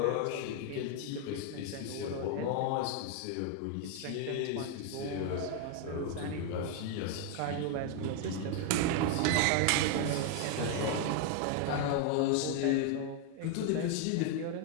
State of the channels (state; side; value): different; both; correlation 0.01